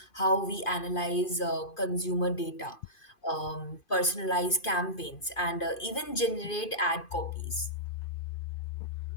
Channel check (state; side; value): late; right; 2.5 ms